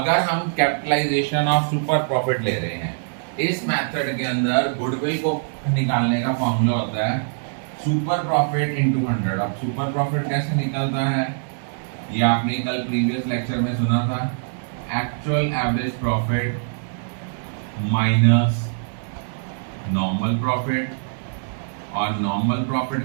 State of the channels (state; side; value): silent; left; digital silence